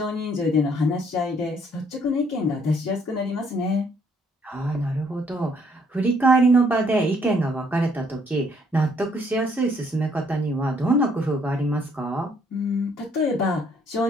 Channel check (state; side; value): normal; both; correlation 0.66